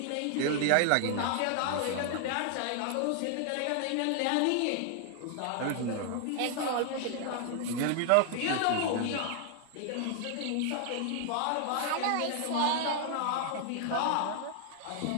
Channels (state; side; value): different; both; correlation 0.00